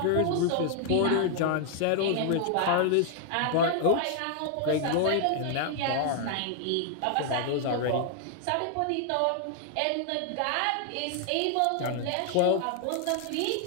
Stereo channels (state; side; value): different; both; correlation 0.00